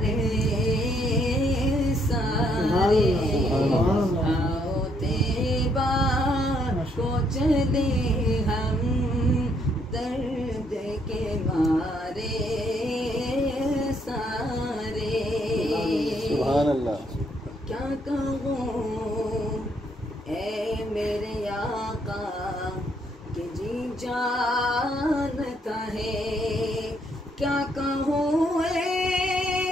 सारे। आओ तैबा को चले हम दर्द के मारे सारे। सुभान अल्लाह। क्या कहूँ ऐ मेरे आका कि जी जानता है। क्या कहूँ ऐ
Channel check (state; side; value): normal; both; correlation 0.71